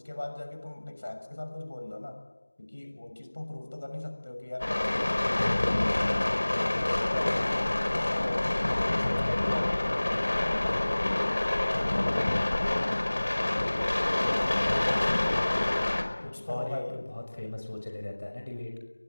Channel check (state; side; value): inverted; both; correlation -1.00